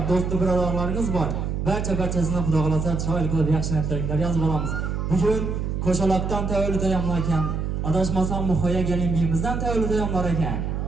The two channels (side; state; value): right; noise; hum, 2 dB below the sound